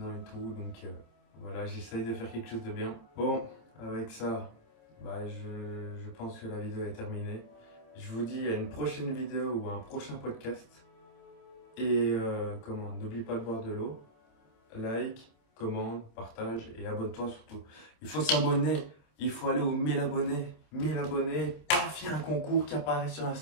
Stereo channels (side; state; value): right; late; 27 ms